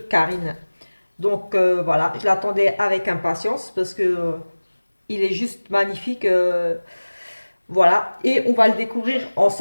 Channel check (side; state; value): both; inverted; correlation -1.00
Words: Karine. Donc voilà, je l'attendais avec impatience parce que il est juste magnifique. Voilà, et on va le découvrir